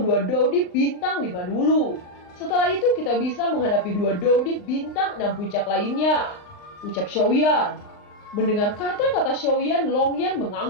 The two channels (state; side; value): late; right; 39 ms